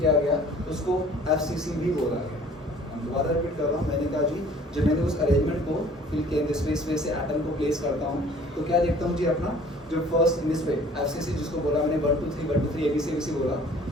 गया उसको FCC भी बोला गया। दोबारा रिपीट कर रहा हूँ, मैंने कहा जी जब मैंने उस अरेंजमेंट को फिल किया दिस वे से एटम को प्लेस करता हूँ, तो क्या देखता हूँ जी अपना जो first in this way FCC जिसको बोला मैंने 1 2 3 ABC बोला,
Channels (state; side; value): normal; both; correlation 0.52